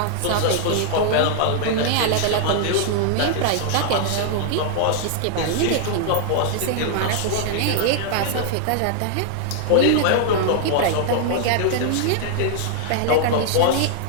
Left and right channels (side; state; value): both; different; correlation -0.01